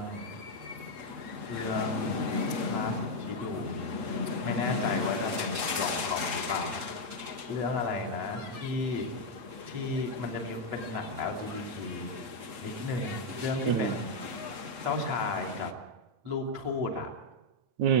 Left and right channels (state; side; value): late; left; 8.1 ms